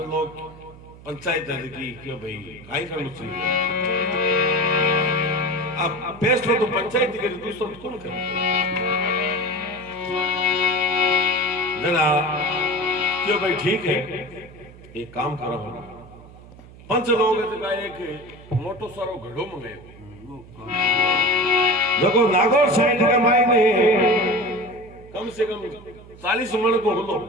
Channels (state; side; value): noise; right; hum, 20 dB below the sound